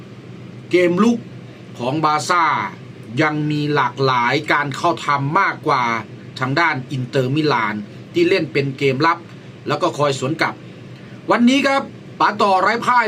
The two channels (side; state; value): both; identical; correlation 1.00